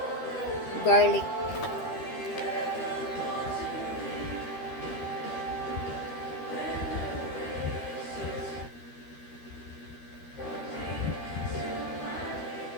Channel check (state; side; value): late; right; 13 ms